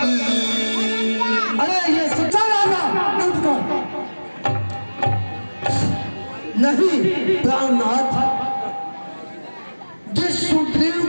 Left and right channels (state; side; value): inverted; both; correlation -1.00